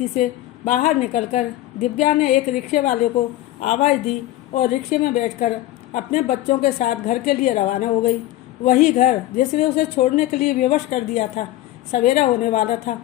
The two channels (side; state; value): right; quieter; 15.1 dB